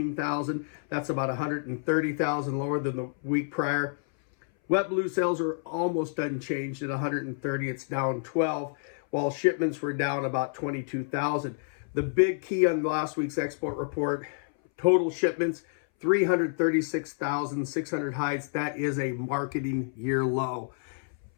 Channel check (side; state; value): right; silent; 59 dB below the other